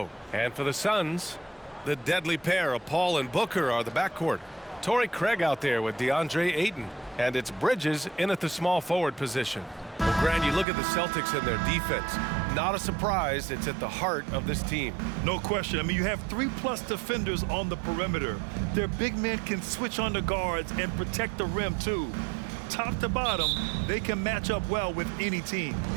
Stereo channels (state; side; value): drops out; left; at 10.7 s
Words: And for the Suns, the deadly pair of Paul and Booker are the backcourt. Torrey Craig out there with DeAndre Ayton. And it's Bridges in at the small forward position. Well, Grant, you look at the Celtics and their defense. Not a surprise, it's at the heart of this team. No question. I mean, you have 3+ defenders on the perimeter. Their big men can switch on the guards and protect the rim, too. Top to bottom, they can match up well with any team.